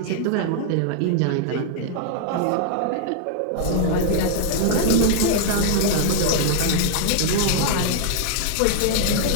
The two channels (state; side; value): different; both; correlation 0.00